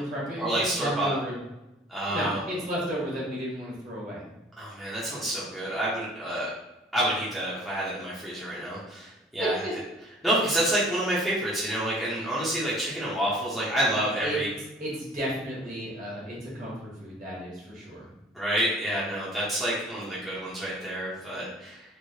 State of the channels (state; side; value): normal; both; correlation 0.50